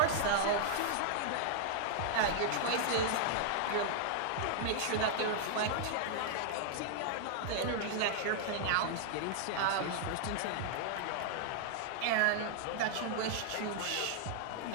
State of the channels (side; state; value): both; different; correlation -0.01